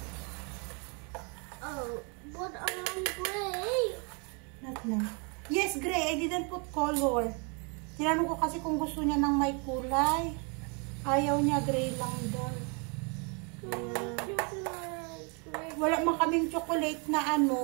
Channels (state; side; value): quieter; left; 35.1 dB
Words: Oh, but I want gray. Not now. Yes, gray. I didn't put color. Tinanong ko kasi kung gusto niya ng may kulay. Ayaw niya, gray lang daw. Wala man kaming chocolate na